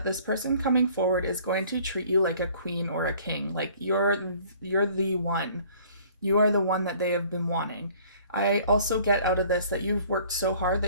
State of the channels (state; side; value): inverted; both; correlation -0.54